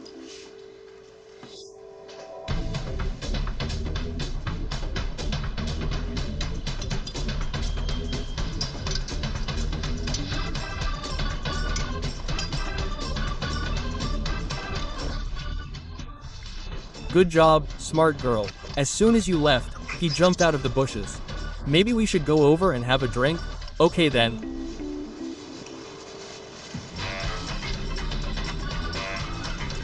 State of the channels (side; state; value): both; identical; correlation 1.00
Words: Good job, smart girl. As soon as you left, he jumped out of the bushes. Maybe we should go over and have a drink? Okay then.